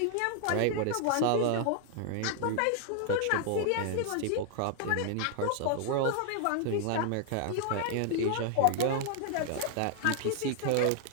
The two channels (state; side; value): different; both; correlation 0.00